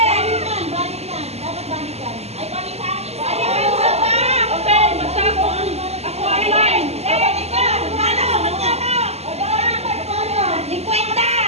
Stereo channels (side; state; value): left; late; 0.30 ms